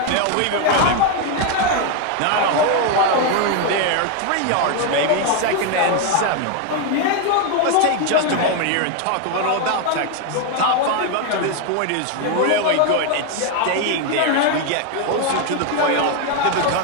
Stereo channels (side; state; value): both; different; correlation 0.01